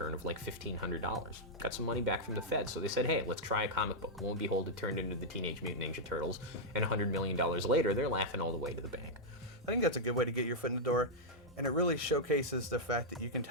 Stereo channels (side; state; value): both; normal; correlation -0.05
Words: of like $1,500. Got some money back from the Fed, so they said, hey, let's try a comic book. Lo and behold, it turned into the Teenage Mutant Ninja Turtles, and $100 million later, they're laughing all the way to the bank. I think that's a good way to get your foot in the door, and it really showcases the fact that you can